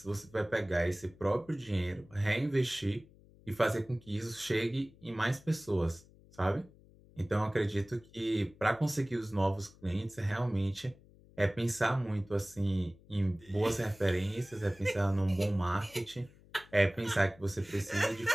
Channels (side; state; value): left; noise; hum, 25 dB below the sound